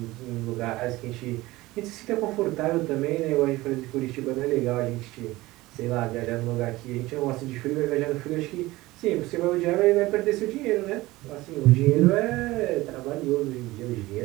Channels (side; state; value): left; quieter; 19.0 dB